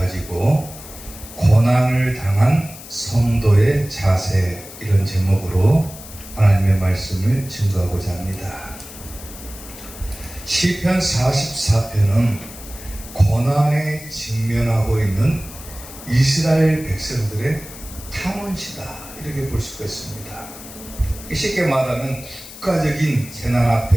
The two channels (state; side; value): noise; left; hiss, 15 dB below the sound